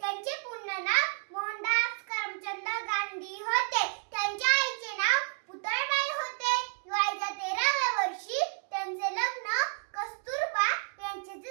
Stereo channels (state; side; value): silent; left; 56 dB below the other